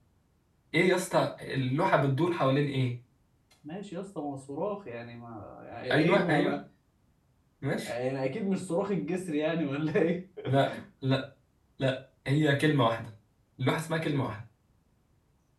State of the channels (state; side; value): identical; both; correlation 1.00